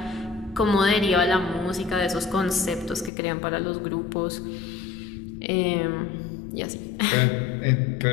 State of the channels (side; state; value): right; drops out; at 3.1 s